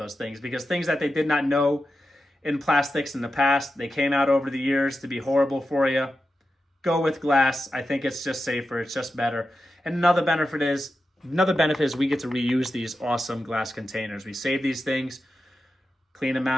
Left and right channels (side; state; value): both; normal; correlation 0.90